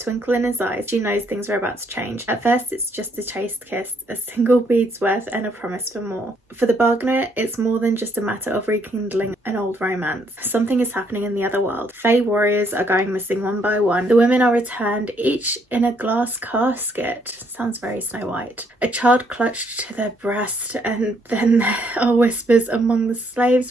in his eyes, she knows things are about to change. At first it's just a chaste kiss, a single bead's worth and a promise for more. For the bargainer, it's more than just a matter of rekindling an old romance. Something is happening in the other world. Fae warriors are going missing one by one. The women are returned, each in a glass casket. Sounds very Snow White. A child clutched to their breast, and then there are whispers among the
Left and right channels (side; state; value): both; normal; correlation 0.70